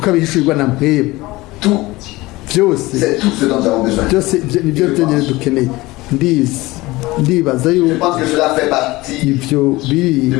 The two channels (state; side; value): quieter; right; 20.3 dB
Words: na mpwebwe. Tout, Byose c'est tout ce dont nous avons besoin. byose nibyo byonyine dukeneye. Ndibaza Je yuko pense que cela fait partie ibyo biri de